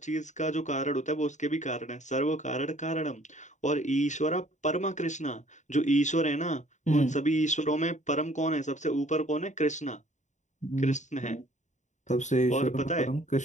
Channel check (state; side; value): late; right; 0.35 ms